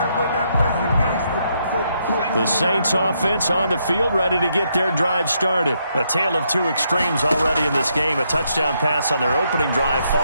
The Saints offense on the field ready to get their drive started. A tale of 2 extremes already in this game. A touchdown pass on their opening drive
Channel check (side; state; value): both; inverted; correlation -0.76